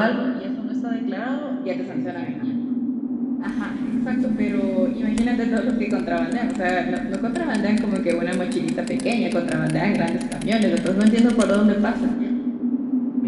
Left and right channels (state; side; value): identical; both; correlation 1.00